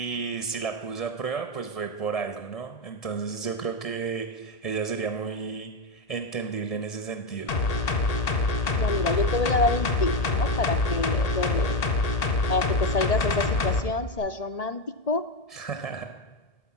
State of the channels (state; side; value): late; right; 1.8 ms